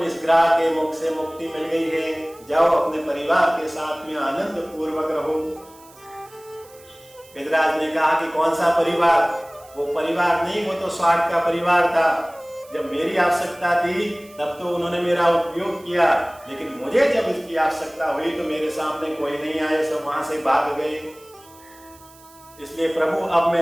इस ग्रह के मुख से मुक्ति मिल गई है, जाओ अपने परिवार के साथ में आनंद पूर्वक रहो। गजराज ने कहा कि कौन सा परिवार? वो परिवार नहीं, वो तो स्वार्थ का परिवार था। जब मेरी आवश्यकता थी तब तो उन्होंने मेरा उपयोग किया, लेकिन मुझे जब इसकी आवश्यकता हुई तो मेरे सामने कोई नहीं आए, सब वहां से भाग गए। इसलिए प्रभु, अब मैं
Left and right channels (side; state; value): right; noise; hiss, 25 dB below the sound